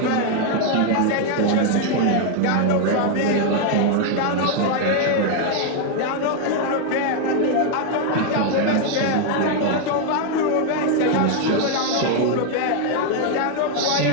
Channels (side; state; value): both; different; correlation 0.00